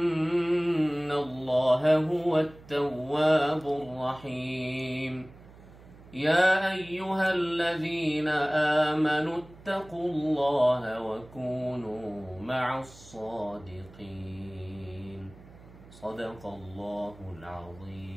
الله هو التواب الرحيم. يا أيها الذين آمنوا اتقوا الله وكونوا مع الصادقين. صدق الله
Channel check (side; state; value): right; noise; hum, 21 dB below the sound